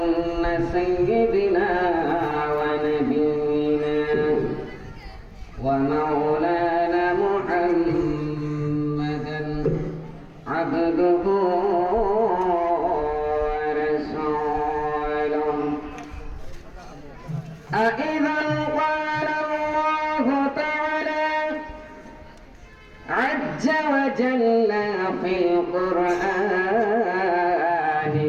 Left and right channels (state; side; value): identical; both; correlation 1.00